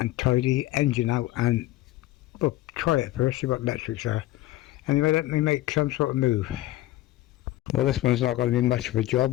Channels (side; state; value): right; quieter; 16.1 dB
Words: tidy engine out, and well, try it first, see what electrics are. Anyway, let me make some sort of move. Well, this one's not going to be much of a